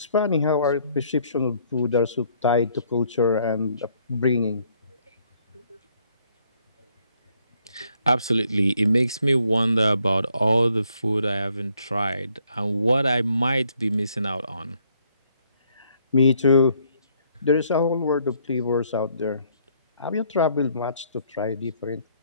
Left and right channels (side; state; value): both; inverted; correlation -0.68